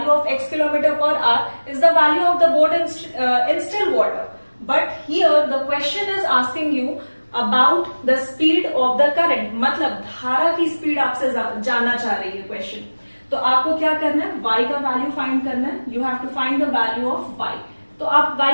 of x kilometre per hour is the value of the boat in still water. But here the question is asking you about the speed of the current, मतलब धारा की स्पीड आपसे जानना चाह रही है क्वेश्चन। तो आपको क्या करना है, y का वैल्यू फाइंड करना है, you have to find the value of y। तो आप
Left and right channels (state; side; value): inverted; both; correlation -1.00